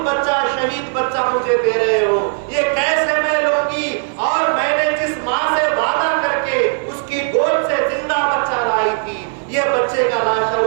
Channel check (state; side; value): silent; left; 57 dB below the other